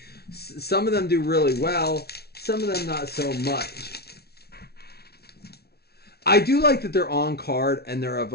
Some of them do really well. Some of them not so much. I do like that they're on card and they're of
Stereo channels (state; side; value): late; right; 0.46 ms